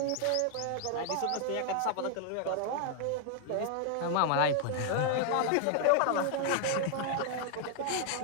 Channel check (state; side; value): different; both; correlation 0.00